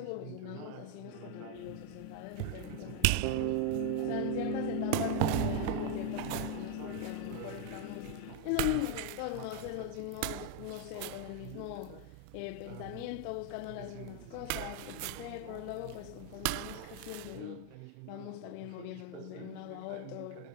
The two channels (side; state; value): both; different; correlation 0.01